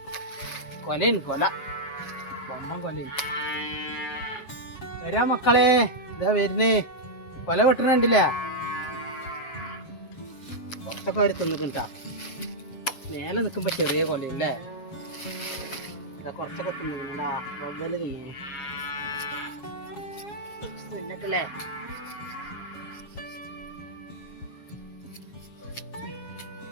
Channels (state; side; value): late; right; 7.3 ms